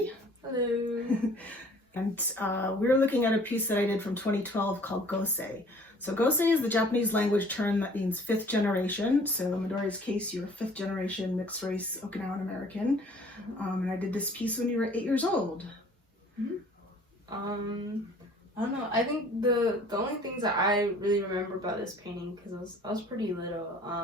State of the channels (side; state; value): both; normal; correlation 0.53